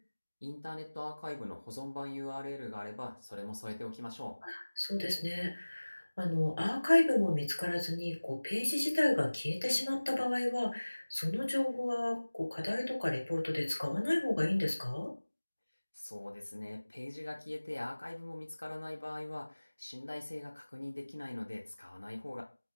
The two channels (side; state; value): both; inverted; correlation -1.00